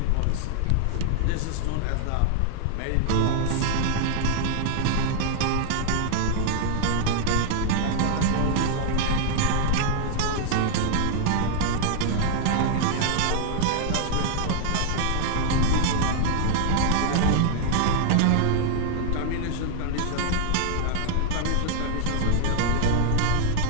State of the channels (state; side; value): different; both; correlation 0.00